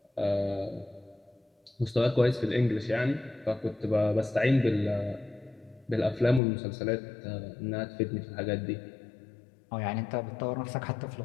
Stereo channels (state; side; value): drops out; right; at 6.4 s